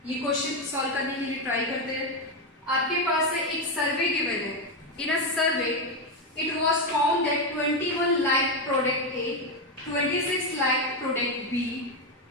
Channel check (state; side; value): normal; both; correlation 0.08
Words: ये क्वेश्चन सॉल्व करने के लिए ट्राई करते हैं। आपके पास है एक सर्वे गिवन है, in a survey it was found that 21 like product A, 26 like product B